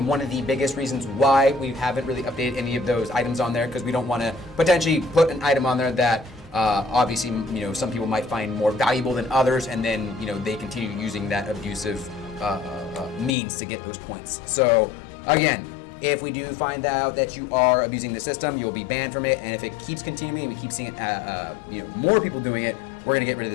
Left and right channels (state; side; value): drops out; right; at 13.3 s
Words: one of the biggest reasons why we haven't really updated any of those items on there, because we don't want to potentially put an item on there that obviously, some people might find more valuable than others, and then, they continue using that abusive means to get those points. So again, if we do find out that you are abusing the system, you'll be banned from it. And if it keeps continuing and we keep seeing it, more people doing it, we're going to get rid of